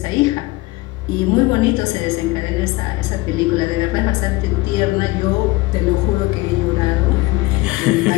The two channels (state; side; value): quieter; right; 20.6 dB